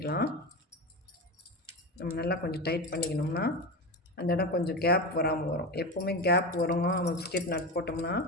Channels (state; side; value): normal; both; correlation 0.21